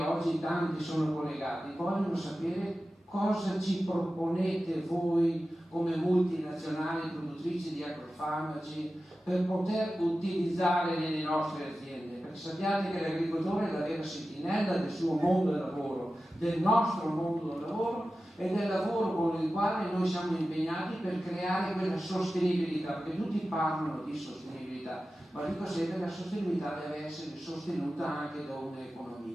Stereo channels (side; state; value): both; normal; correlation 0.94